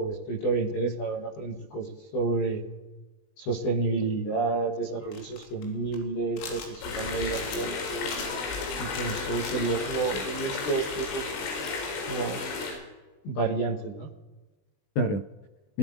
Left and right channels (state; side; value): late; right; 20 ms